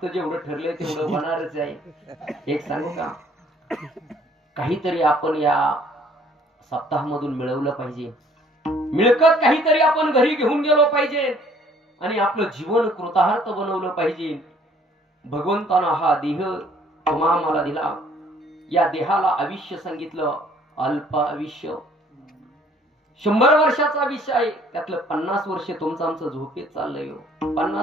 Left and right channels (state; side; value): normal; both; correlation 0.59